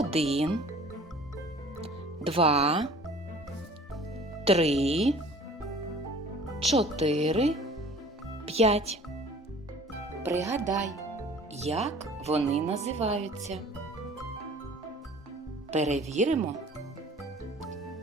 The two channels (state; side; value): normal; both; correlation 0.48